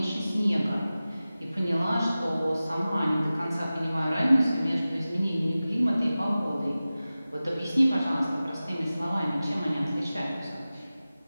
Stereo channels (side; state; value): both; inverted; correlation -0.96